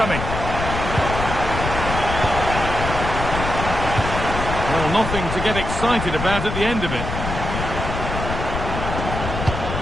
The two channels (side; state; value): left; noise; rumble, 4 dB below the sound